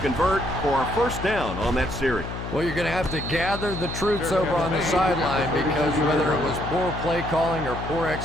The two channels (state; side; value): noise; left; hum, 7 dB below the sound